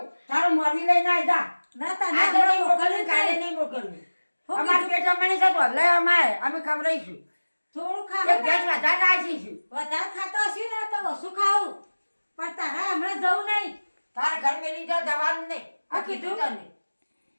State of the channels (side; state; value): both; inverted; correlation -1.00